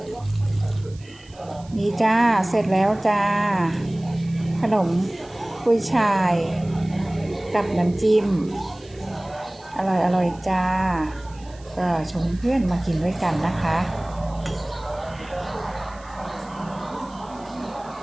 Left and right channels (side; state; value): right; noise; hiss, 25 dB below the sound